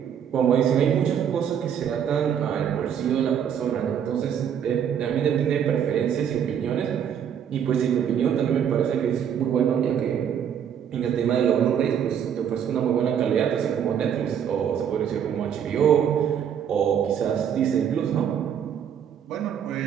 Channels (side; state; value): left; quieter; 8.6 dB